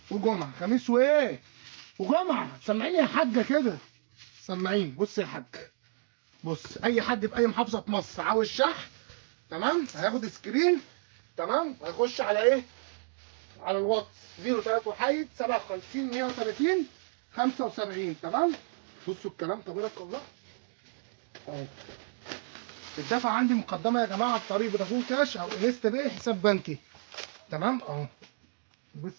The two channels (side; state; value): left; silent; digital silence